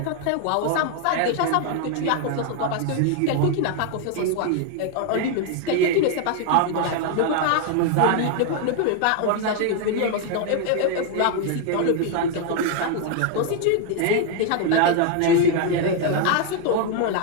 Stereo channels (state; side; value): different; both; correlation 0.00